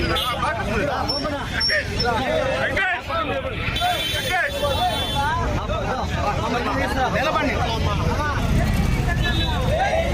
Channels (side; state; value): both; identical; correlation 1.00